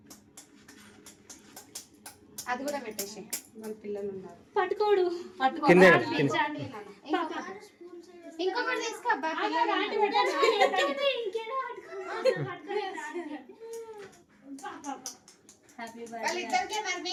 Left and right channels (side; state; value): both; identical; correlation 1.00